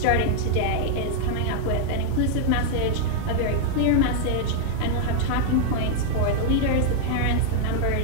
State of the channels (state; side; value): different; both; correlation -0.01